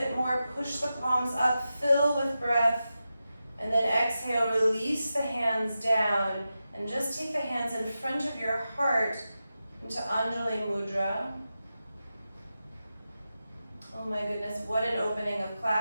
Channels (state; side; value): inverted; both; correlation -0.91